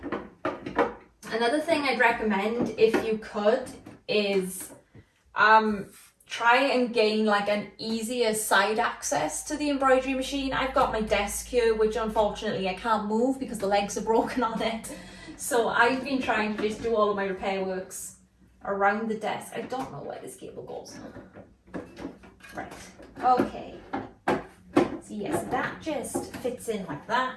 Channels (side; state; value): both; identical; correlation 1.00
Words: Another thing I'd recommend, if you could, is try and gain like an easier side access to the embroidery machine. I've got my desk here, which unfortunately I can't move because the legs are broken on it. So I've been trying to just do all of my repair works around the desk. I don't know where this cable goes. Right, okay. So yes, that just fits in like